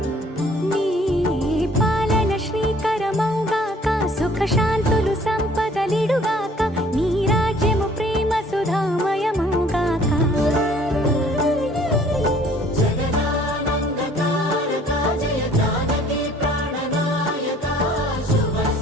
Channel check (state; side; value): normal; both; correlation 0.56